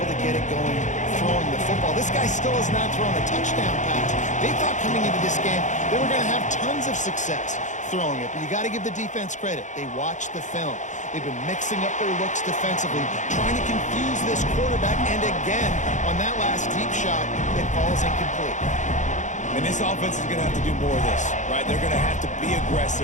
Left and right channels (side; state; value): right; late; 0.35 ms